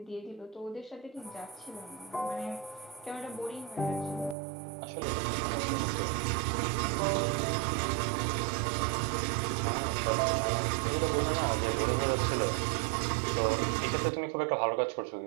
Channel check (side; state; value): left; drops out; at 4.4 s